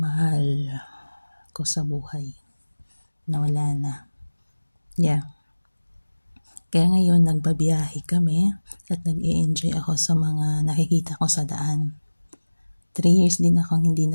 ko sa buhay na wala na. Kaya ngayon, nagbabiyahe kami at nag-i-enjoy ako sa mga nakikita ko sa daan. 3 years din akong hindi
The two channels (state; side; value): inverted; both; correlation -1.00